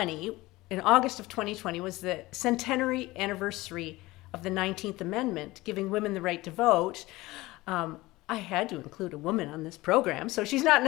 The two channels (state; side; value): quieter; right; 19.7 dB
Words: in August of 2020, was the centenary anniversary of the 19th Amendment, giving women the right to vote. I had to include a woman on this program. So she's not